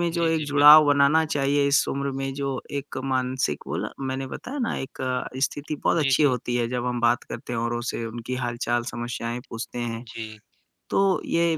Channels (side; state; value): both; identical; correlation 1.00